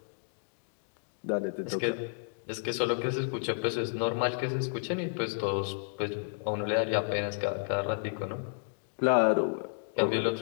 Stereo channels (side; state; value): right; silent; digital silence